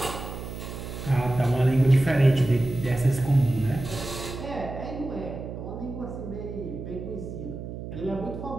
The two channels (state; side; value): noise; right; hum, 9 dB below the sound